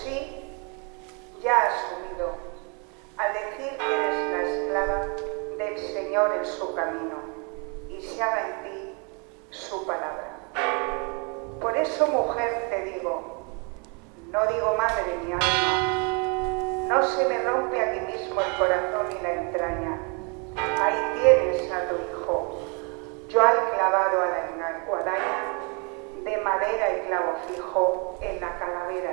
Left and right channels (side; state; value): left; quieter; 34.6 dB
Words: ya has asumido, al decir que eres la esclava del Señor en su camino, y se haga en ti su palabra. Por eso, mujer, te digo, no digo madre ni alma, no se me rompe aquí mismo el corazón y la entraña. Ahí tienes a tu hijo, yo al clavado a la guadaña, de madera y clavo fijo en la calavera